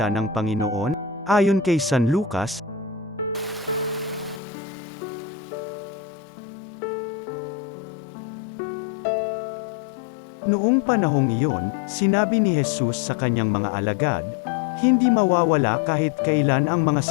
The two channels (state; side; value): drops out; right; at 4.4 s